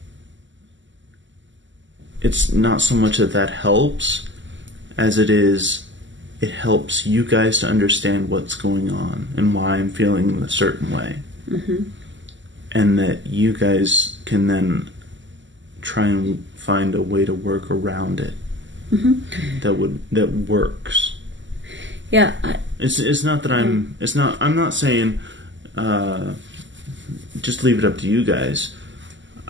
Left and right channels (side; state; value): left; late; 0.54 ms